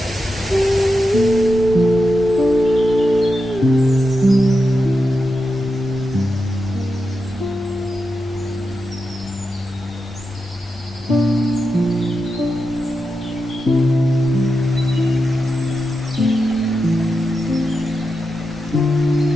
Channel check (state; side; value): normal; both; correlation 0.88